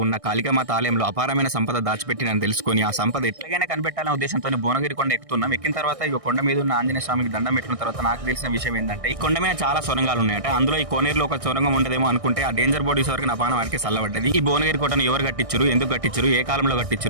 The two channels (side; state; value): left; late; 1.6 ms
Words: ఉన్న కాళికామాత ఆలయంలో అపారమైన సంపద దాచిపెట్టినని తెలుసుకొని ఆ సంపద ఎట్లాగైనా కనిపెట్టాలనే ఉద్దేశంతో భువనగిరి కొండ ఎక్కుతున్నాం. ఎక్కిన తర్వాత ఈ కొండ మీద ఉన్న ఆంజనేయ స్వామికి దండం పెట్టిన తర్వాత నాకు తెలిసిన విషయం ఏంటంటే ఈ కొండ మీద చాలా సొరంగాలు ఉన్నాయట. అందులో ఈ కోనేరులో ఒక సొరంగం ఉండదేమో అనుకుంటే ఆ డేంజర్ బోర్డు వరకు నా పానం వారికి చల్లబడ్డది. ఈ భువనగిరి కోటను ఎవరు కట్టించారు, ఎందుకు కట్టించారు, ఏ కాలంలో